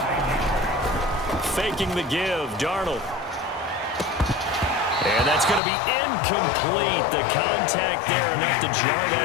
Faking the give, Darnold. And that's going to be incomplete. The contact there enough to jar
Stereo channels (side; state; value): right; drops out; at 5.6 s